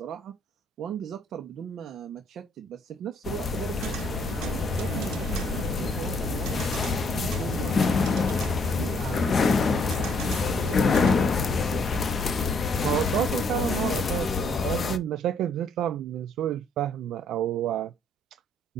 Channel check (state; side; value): normal; both; correlation 0.66